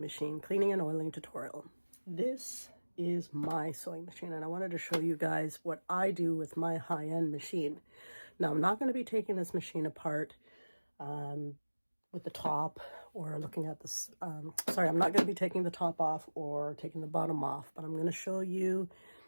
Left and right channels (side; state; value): both; inverted; correlation -1.00